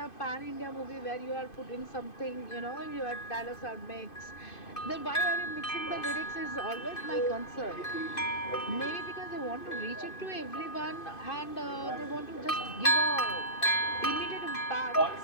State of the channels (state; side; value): late; right; 2.5 ms